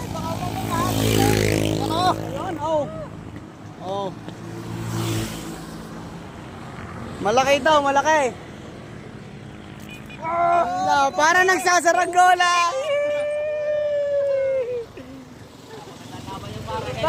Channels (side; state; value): both; identical; correlation 1.00